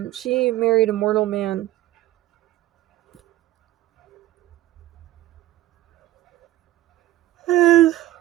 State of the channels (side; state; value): left; quieter; 14.9 dB